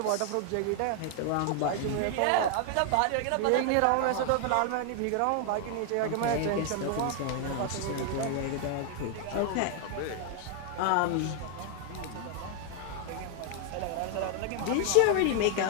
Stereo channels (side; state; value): both; different; correlation 0.00